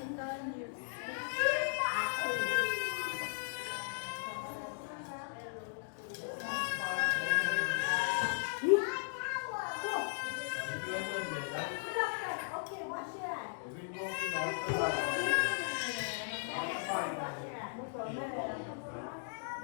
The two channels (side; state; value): right; silent; digital silence